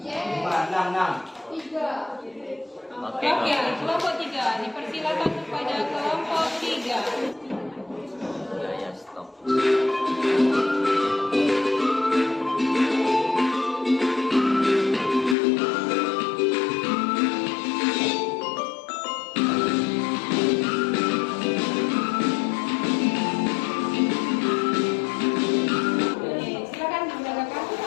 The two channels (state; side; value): drops out; right; at 15.4 s